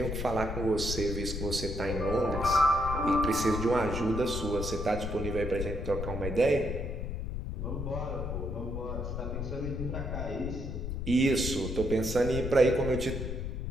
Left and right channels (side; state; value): left; noise; rumble, 4 dB below the sound